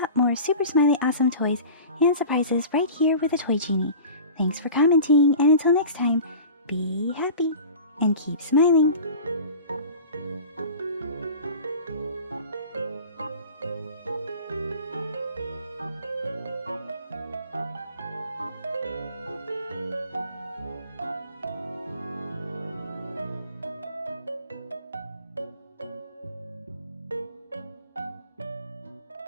more super smiley awesome toys and surprises right here with the Toy Genie. Thanks for commenting, and until next time, be happy and keep smiling.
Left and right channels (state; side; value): inverted; both; correlation -0.38